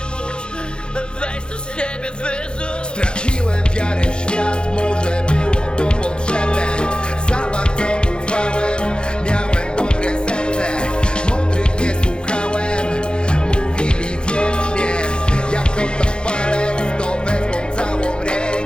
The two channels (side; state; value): right; late; 0.051 ms